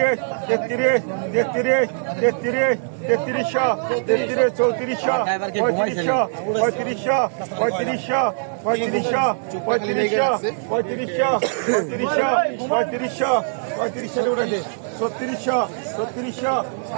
তেত্রিশ তেত্রিশ তেত্রিশ তেত্রিশশো তেত্রিশ চৌত্রিশশো পঁয়ত্রিশশো পঁয়ত্রিশশো পঁয়ত্রিশশো পঁয়ত্রিশশো পঁয়ত্রিশশো পঁয়ত্রিশশো পঁয়ত্রিশশো পঁয়ত্রিশশো পঁয়ত্রিশশো উঠেছে ছত্রিশশো ছত্রিশশো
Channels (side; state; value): left; silent; digital silence